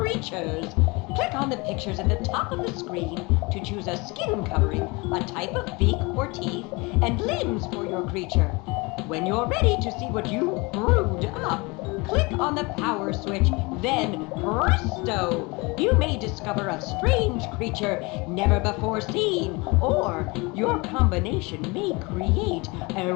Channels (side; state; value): right; quieter; 26.2 dB